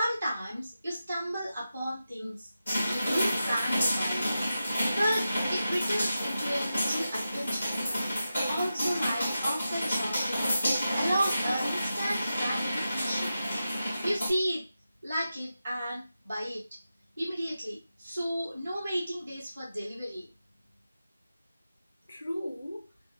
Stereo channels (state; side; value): inverted; both; correlation -0.91